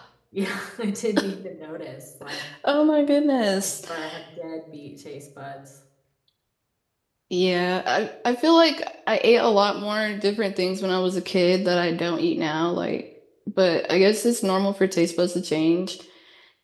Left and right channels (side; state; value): both; identical; correlation 1.00